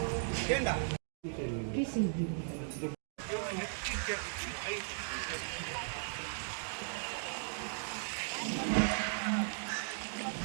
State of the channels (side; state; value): left; silent; digital silence